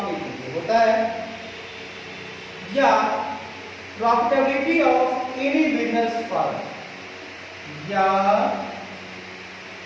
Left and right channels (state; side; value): identical; both; correlation 1.00